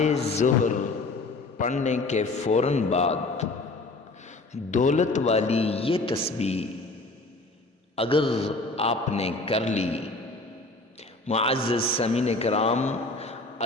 ظہر پڑھنے کے فوراً بعد دولت والی یہ تسبیح اگر آپ نے کر لی، معزز سامعین کرام،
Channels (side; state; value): right; quieter; 3.1 dB